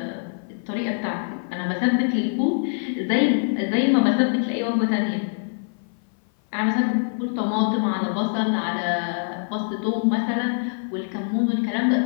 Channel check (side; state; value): right; silent; 57 dB below the other